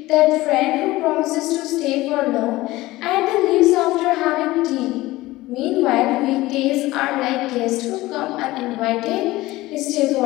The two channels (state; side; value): quieter; right; 18.4 dB